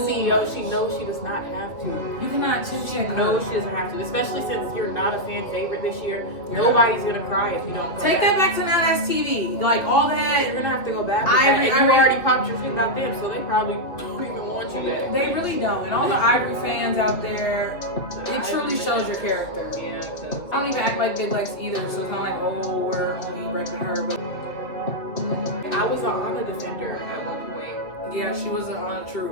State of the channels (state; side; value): late; right; 2.4 ms